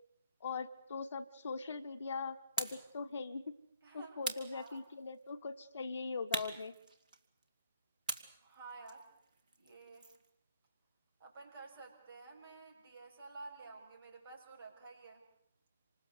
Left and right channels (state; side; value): inverted; both; correlation -0.68